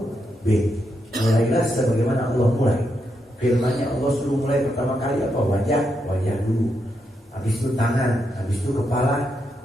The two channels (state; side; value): normal; both; correlation 0.82